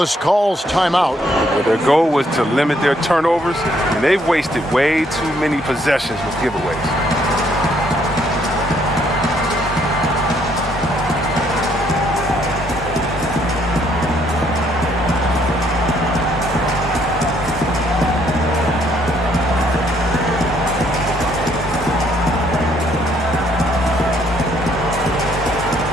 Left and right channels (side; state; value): both; normal; correlation 0.68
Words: calls timeout. But their goal was to limit their turnovers, and they've wasted way too many possessions with giveaways.